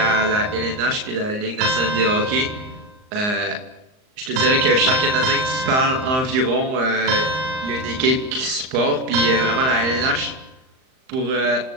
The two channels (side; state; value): left; late; 38 ms